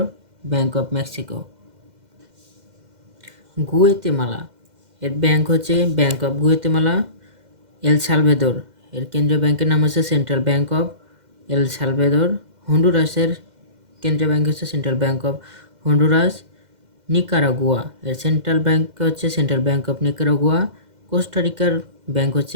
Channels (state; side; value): late; left; 2.1 ms